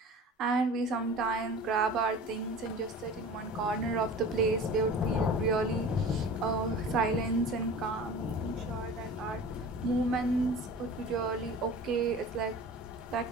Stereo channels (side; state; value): both; normal; correlation 0.39